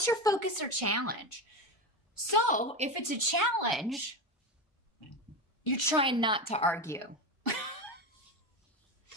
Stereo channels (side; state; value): both; normal; correlation 0.18